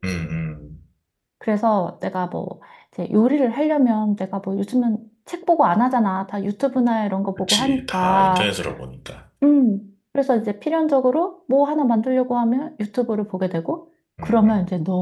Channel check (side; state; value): both; identical; correlation 1.00